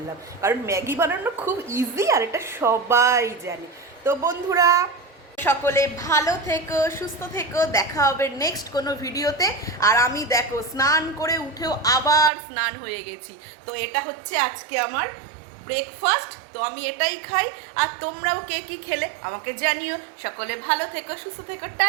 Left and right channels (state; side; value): drops out; left; at 12.3 s